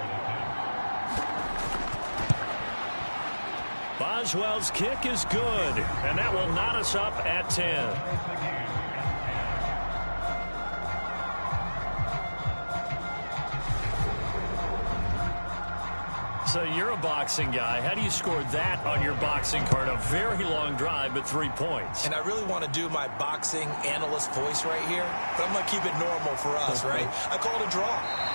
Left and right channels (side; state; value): both; inverted; correlation -1.00